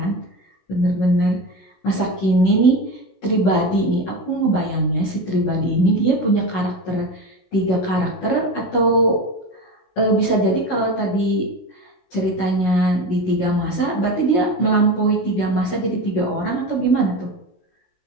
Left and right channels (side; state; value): right; late; 16 ms